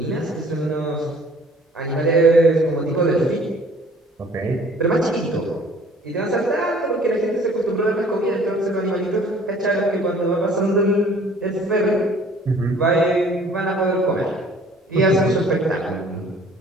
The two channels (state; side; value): normal; both; correlation 0.54